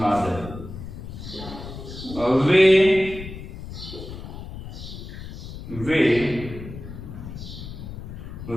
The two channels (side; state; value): left; noise; rumble, 11 dB below the sound